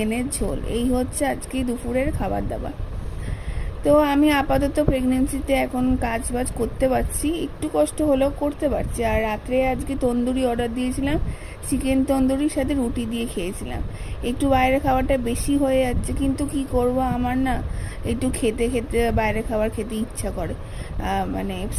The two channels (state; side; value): identical; both; correlation 1.00